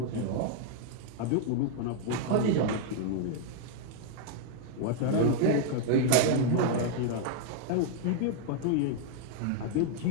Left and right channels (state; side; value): different; both; correlation 0.00